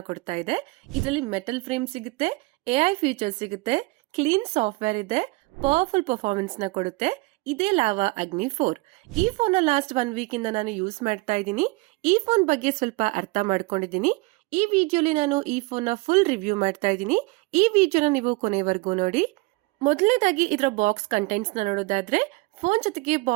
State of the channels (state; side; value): quieter; left; 25.4 dB